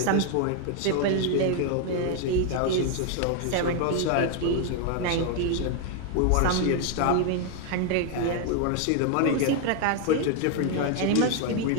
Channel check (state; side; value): different; both; correlation 0.00